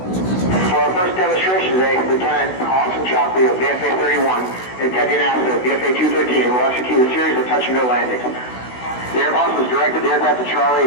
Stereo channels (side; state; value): right; late; 16 ms